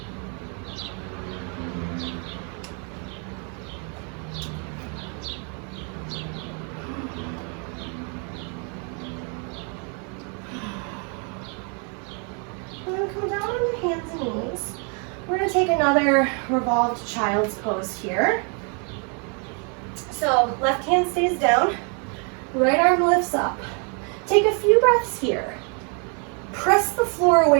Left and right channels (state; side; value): quieter; left; 37.8 dB